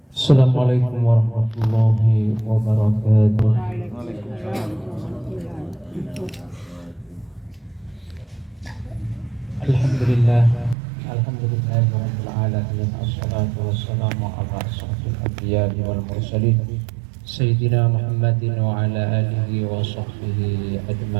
Assalamualaikum warahmatullahi wabarakatuh. Alhamdulillah, alhamdulillahirabbil alamin. Assalatu wassalamu ala asyrafil anbiya'i wal mursalin sayyidina Muhammadin wa ala alihi wa sahbihi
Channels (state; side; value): drops out; left; at 10.8 s